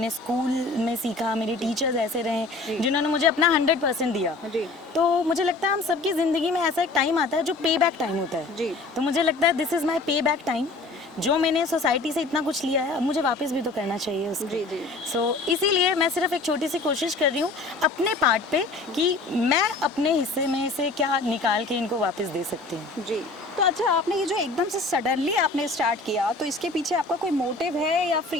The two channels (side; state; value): right; quieter; 3.4 dB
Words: स्कूल में सीखा, मेरे टीचर्स ऐसे रहे जिन्होंने मुझे अपना 100% दिया। तो मुझे लगता है हम सबकी ज़िंदगी में ऐसा एक टाइम आता है जो पे बैक टाइम होता है। तो मुझे लगता है दिस इज़ माई पे बैक टाइम। जो मैंने सोसाइटी से इतना कुछ लिया है, अब मुझे वापस भी तो करना चाहिए उसको। सो इसीलिए मैं सिर्फ एक छोटी सी कोशिश कर रही हूँ अपने पार्ट पे कि मैं अपने हिस्से में से क्या निकाल के इनको वापस दे सकती हूँ। जी। तो अच्छा, आपने ये जो एकदम से सडनली आपने स्टार्ट किया, तो इसके पीछे आपका कोई मोटिव है या